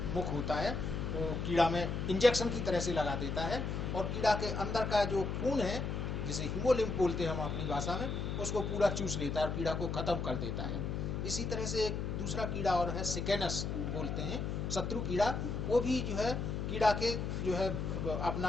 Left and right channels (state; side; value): noise; left; hum, 2 dB below the sound